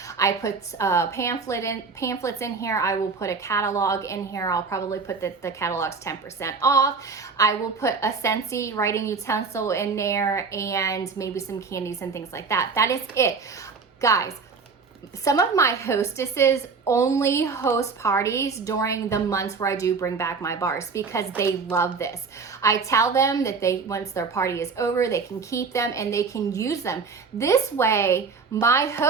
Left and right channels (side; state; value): left; quieter; 4.9 dB